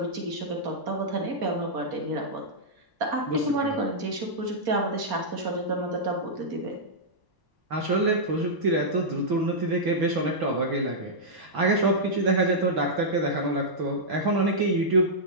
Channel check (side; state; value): left; late; 1.0 ms